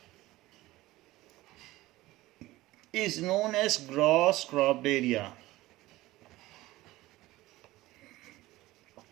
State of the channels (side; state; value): left; quieter; 17.9 dB